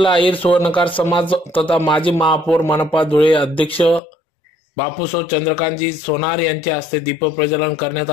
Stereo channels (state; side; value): drops out; right; at 4.0 s